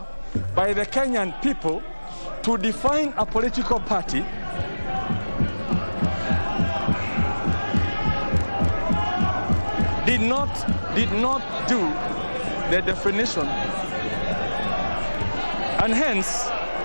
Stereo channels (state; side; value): inverted; both; correlation -1.00